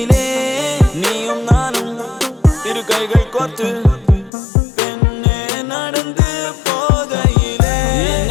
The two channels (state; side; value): drops out; right; at 4.3 s